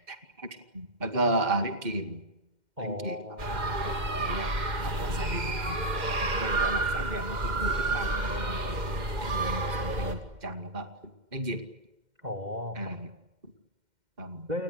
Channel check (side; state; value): left; late; 2.1 ms